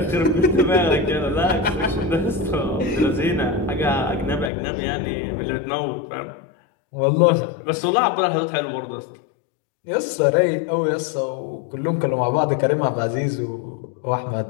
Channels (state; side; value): drops out; right; at 4.5 s